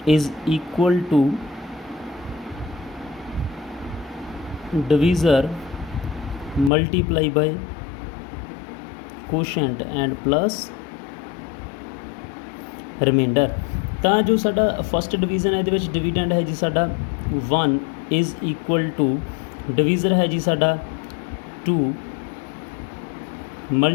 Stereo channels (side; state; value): right; drops out; at 6.7 s